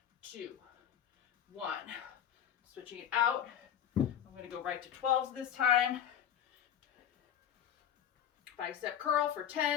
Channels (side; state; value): right; quieter; 9.7 dB